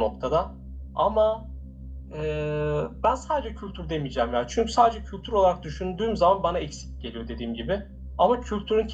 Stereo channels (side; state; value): both; identical; correlation 1.00